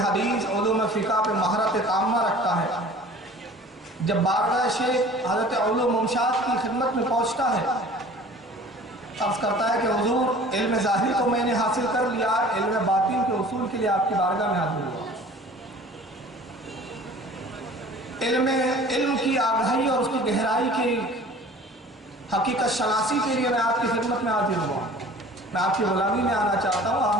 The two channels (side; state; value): both; normal; correlation 0.46